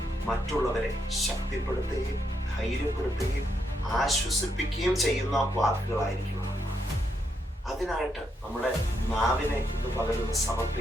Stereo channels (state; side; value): normal; both; correlation 0.79